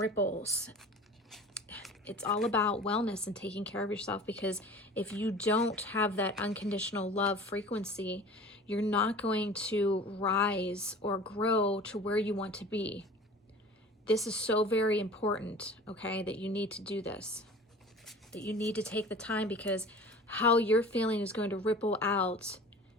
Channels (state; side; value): normal; both; correlation 0.41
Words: It's all about wellness and taking care of yourself, because if you don't have that unconditional love frequency, you're not going to rise or grow to where you want to be. This is so very important, okay, that you need to do this. That you need to take the time, because how you're feeling is going to ripple out